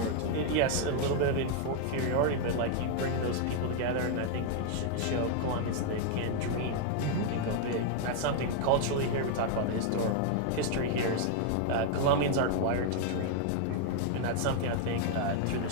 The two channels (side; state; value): both; different; correlation 0.00